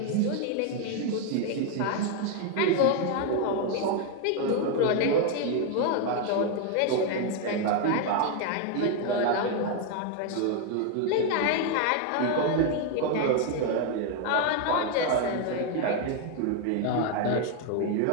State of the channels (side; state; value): both; different; correlation 0.01